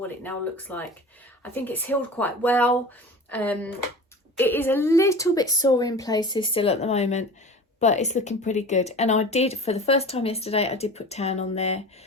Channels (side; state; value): both; normal; correlation 0.36